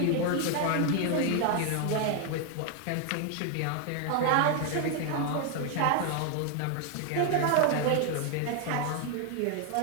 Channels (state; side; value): different; both; correlation 0.00